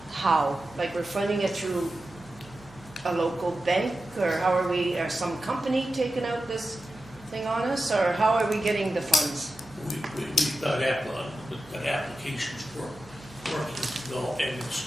how? Like we're funding it through a local bank, or how are we, or some company taking out this thing on us, or how are we getting the funds? We've got applications for working to go, and it's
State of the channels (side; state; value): right; noise; hum, 23 dB below the sound